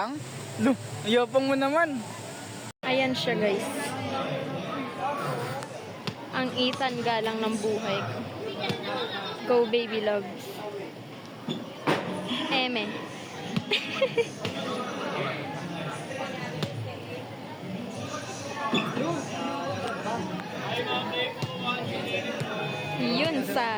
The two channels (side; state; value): both; identical; correlation 1.00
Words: Lo, ayopang mo naman. Ayan siya guys. Ang Ethan galang ng buhay ko. Go baby love. Eme. Yun,